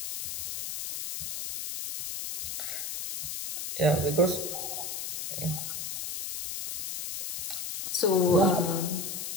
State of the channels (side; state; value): left; noise; hiss, 5 dB below the sound